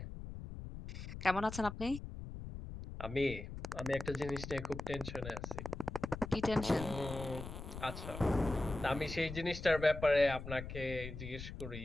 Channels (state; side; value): noise; left; rumble, 9 dB below the sound